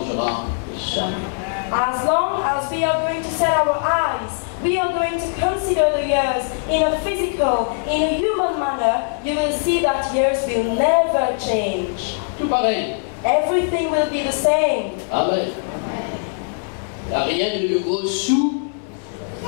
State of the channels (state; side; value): silent; right; digital silence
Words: jamais. As long as we are going to set our eyes, we are going to consider the years in a physical, in a human manner, you will see that years will never change. Tout pareil. Everything will be the same. Amen. Il n'y a rien de nouveau sous